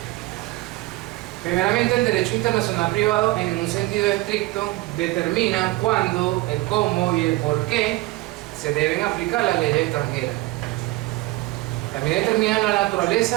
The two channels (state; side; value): quieter; left; 19.5 dB